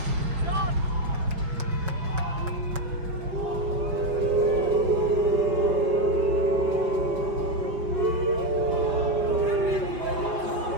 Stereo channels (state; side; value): late; left; 5.5 ms